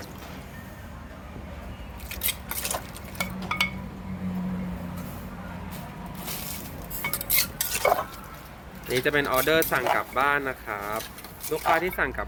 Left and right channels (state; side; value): identical; both; correlation 1.00